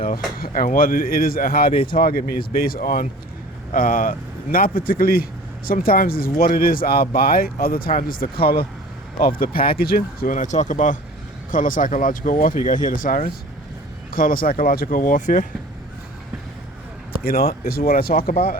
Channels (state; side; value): normal; both; correlation 0.43